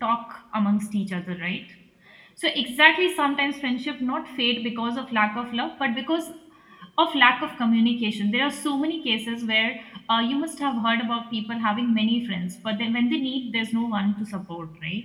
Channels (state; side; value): identical; both; correlation 1.00